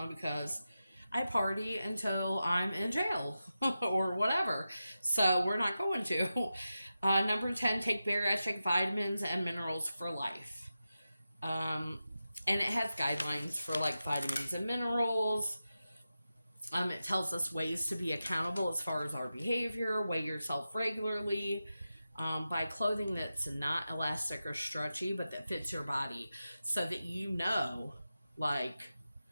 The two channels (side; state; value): both; inverted; correlation -0.92